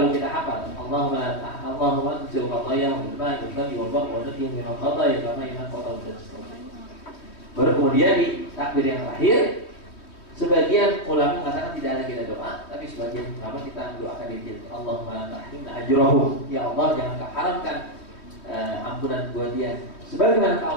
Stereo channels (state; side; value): late; right; 3.2 ms